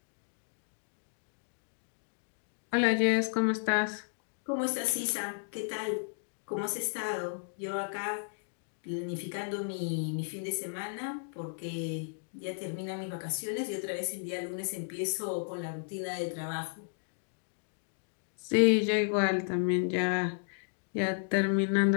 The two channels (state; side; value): silent; right; digital silence